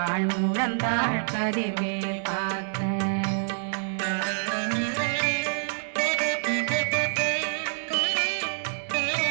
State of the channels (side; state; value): left; silent; digital silence